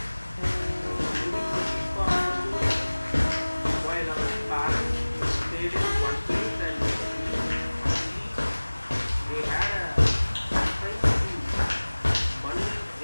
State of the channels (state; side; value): inverted; both; correlation -1.00